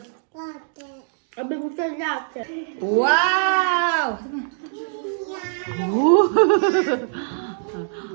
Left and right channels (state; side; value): silent; left; digital silence